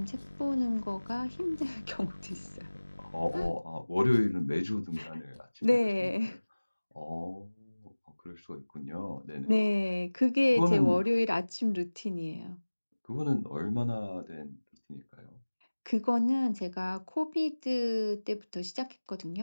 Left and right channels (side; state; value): both; inverted; correlation -1.00